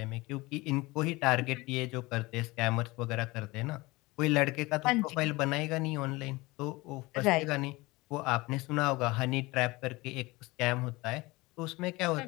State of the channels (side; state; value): right; quieter; 22.1 dB